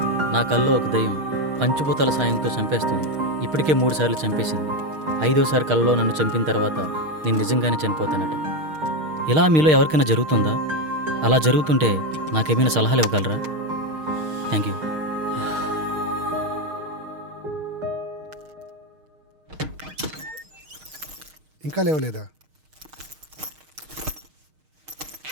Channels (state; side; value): late; left; 6.5 ms